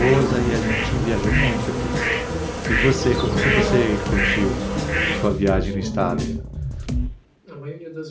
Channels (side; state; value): both; identical; correlation 1.00